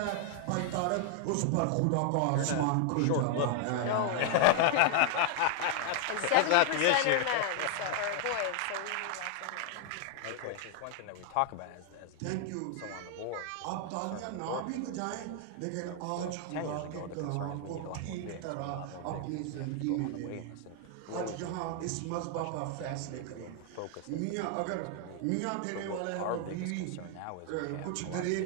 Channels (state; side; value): different; both; correlation 0.00